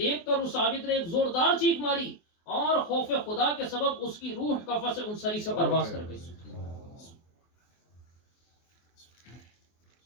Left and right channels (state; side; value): late; right; 24 ms